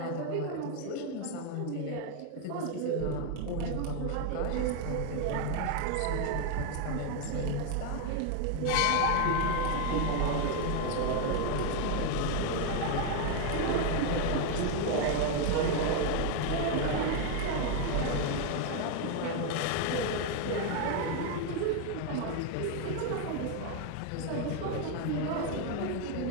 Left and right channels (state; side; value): different; both; correlation 0.01